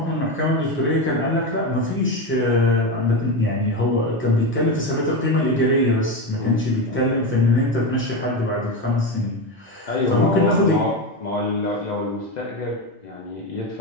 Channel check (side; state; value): both; normal; correlation 0.16